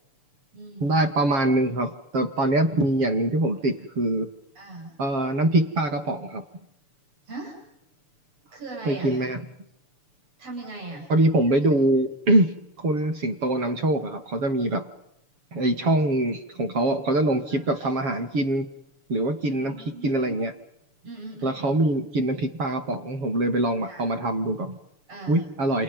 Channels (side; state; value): left; late; 6.9 ms